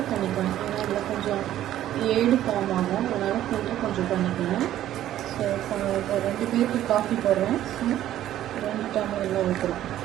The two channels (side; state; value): left; quieter; 12.6 dB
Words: பண்ணிக்கணும். ஏன்னா இதில் கொஞ்சம் ஏடு ஃபார்ம் ஆகும், அதனால் ஃபில்டர் கொஞ்சம் பண்ணிக்கணும். ஸோ இப்போ 2 பேருக்கு காஃபி போடுறேன். ஸோ 2 டம்ளரில் ஊற்றுறோம்.